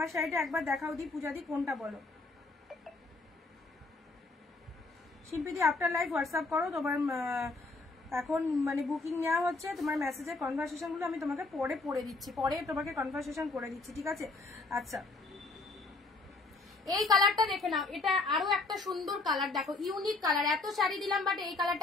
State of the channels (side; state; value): right; quieter; 3.5 dB